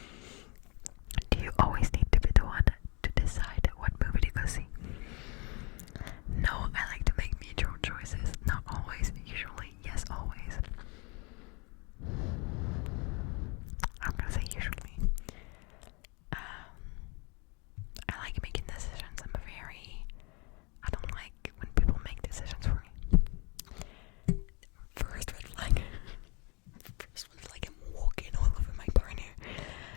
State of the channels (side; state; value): right; quieter; 29.5 dB